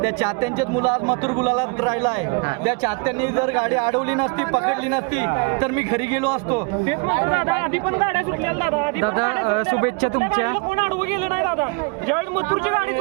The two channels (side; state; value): left; quieter; 32.0 dB